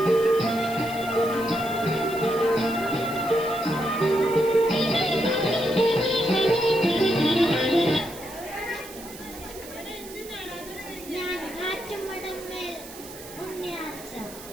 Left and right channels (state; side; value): noise; right; hiss, 16 dB below the sound